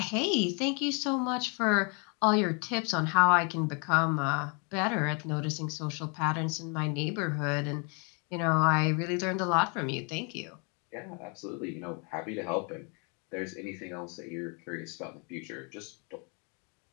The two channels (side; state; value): right; quieter; 35.0 dB